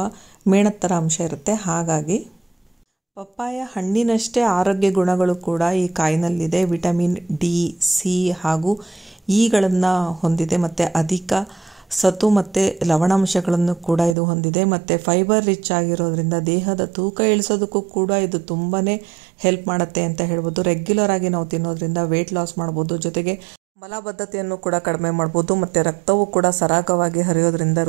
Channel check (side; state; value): left; drops out; at 14.2 s